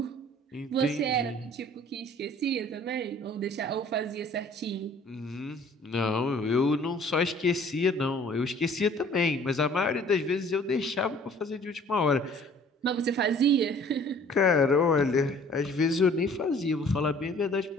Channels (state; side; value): normal; both; correlation 0.53